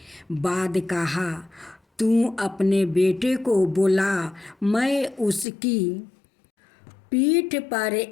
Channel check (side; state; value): right; drops out; at 5.5 s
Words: बाद कहा, तू अपने बेटे को बुला, मैं उसकी पीठ पर